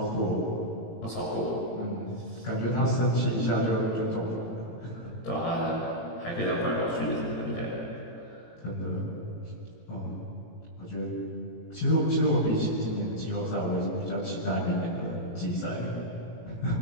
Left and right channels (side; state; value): right; late; 18 ms